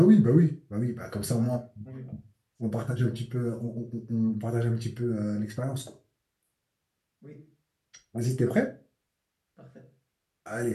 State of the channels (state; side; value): identical; both; correlation 1.00